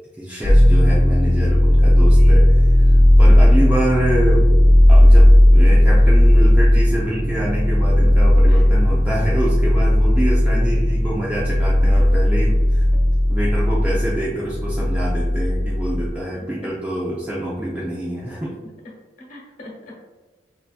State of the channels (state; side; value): normal; both; correlation 0.98